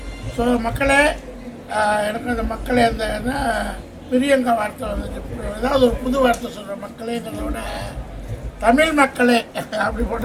ஸோ மக்களே, எனக்கு அந்த மக்களே அந்த பிரியங்கா வார்த்தை வந்துச்சு. ஏதாவது ஒரு புது வார்த்தை சொல்கிற மக்களேங்கிறத விட தமிழ் மக்களே அப்படி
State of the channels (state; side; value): identical; both; correlation 1.00